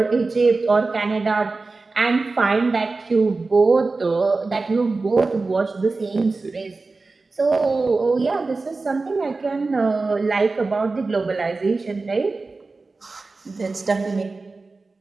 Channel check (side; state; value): left; quieter; 3.7 dB